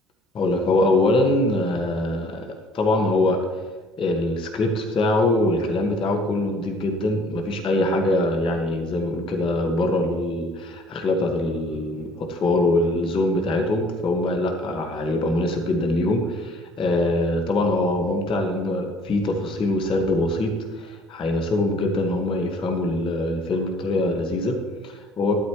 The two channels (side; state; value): both; normal; correlation 0.56